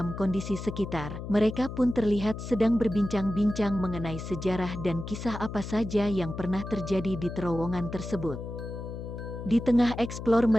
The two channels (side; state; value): left; noise; hum, 8 dB below the sound